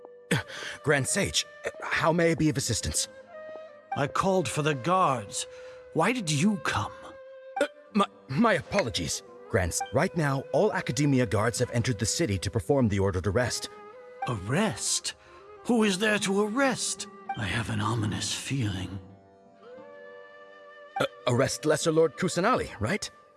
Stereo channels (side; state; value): both; identical; correlation 1.00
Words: Grand Sage, how may I be of assistance? I called for the guards. Why did you come? My apologies, Grants. Right now, all Academia guards have entered the city to perform the ordered arrest. Arrest? Who is there to arrest? I have an ominous feeling. Arrest Lesser Lord Kusanali, right?